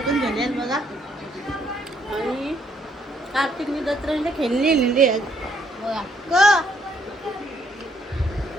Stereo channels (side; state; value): both; normal; correlation 0.69